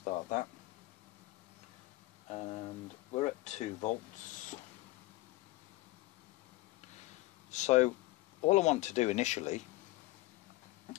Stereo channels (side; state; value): right; quieter; 19.4 dB